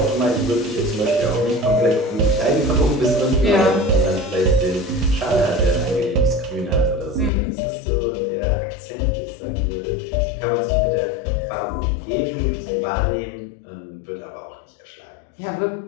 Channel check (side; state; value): right; drops out; at 7.3 s